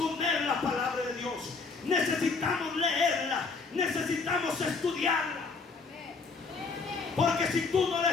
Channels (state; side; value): quieter; right; 4.4 dB